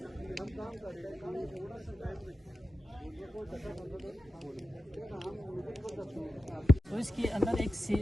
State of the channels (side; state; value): both; normal; correlation 0.91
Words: तो इसके अंदर एक